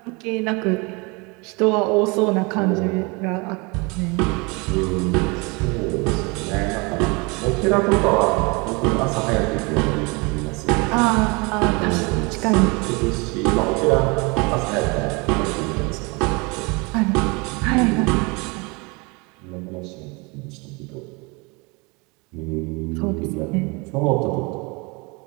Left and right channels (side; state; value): left; quieter; 28.3 dB